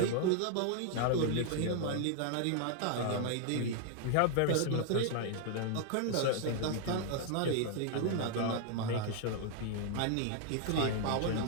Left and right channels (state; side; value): different; both; correlation 0.00